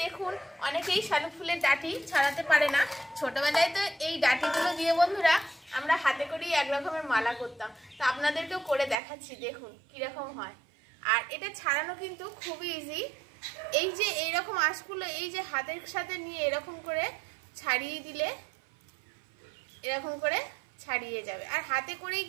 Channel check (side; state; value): left; drops out; at 9.0 s